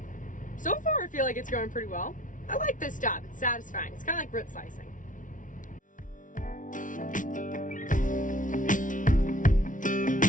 So far, I feel like it's going pretty well. I like this job, it's satisfying. It's kind of like root slicing.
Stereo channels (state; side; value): late; right; 0.38 ms